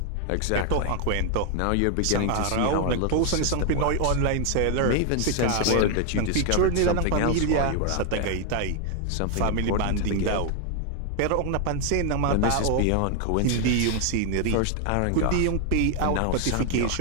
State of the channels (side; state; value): both; different; correlation 0.01